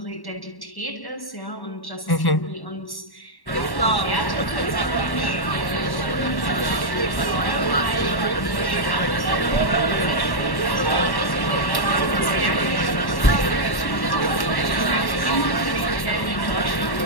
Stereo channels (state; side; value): late; right; 1.1 ms